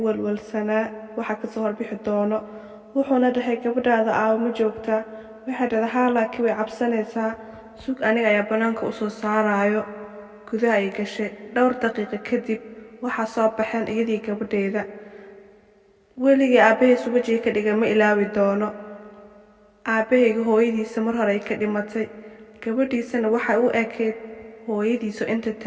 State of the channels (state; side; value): identical; both; correlation 1.00